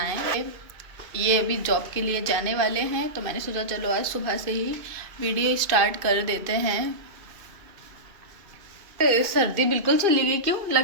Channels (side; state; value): left; late; 2.6 ms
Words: ये अभी जॉब के लिए जाने वाले हैं, तो मैंने सोचा चलो आज सुबह से ही वीडियो स्टार्ट कर देते हैं। सर्दी बिल्कुल चली गई, क्यों